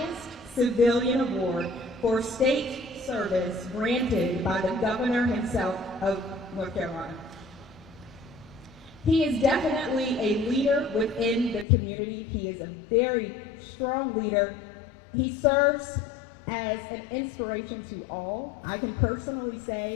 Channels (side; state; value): right; drops out; at 11.7 s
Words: civilian award for state service granted by the governor himself of North Carolina. He is definitely a leader within the community. He is a very strong leader. He serves as an inspiration to all. I can personally